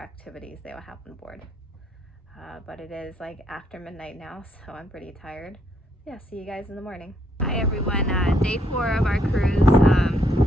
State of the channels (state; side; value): normal; both; correlation 0.72